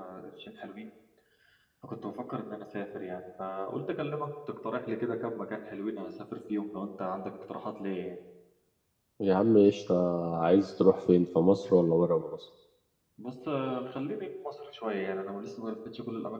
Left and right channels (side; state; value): both; identical; correlation 1.00